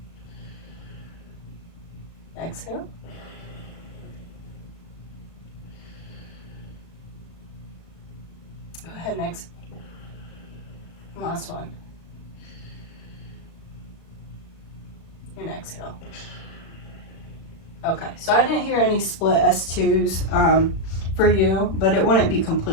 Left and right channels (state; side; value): late; right; 36 ms